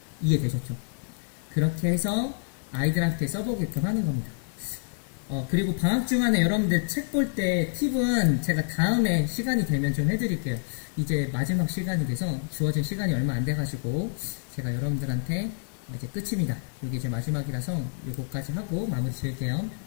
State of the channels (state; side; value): silent; right; 60 dB below the other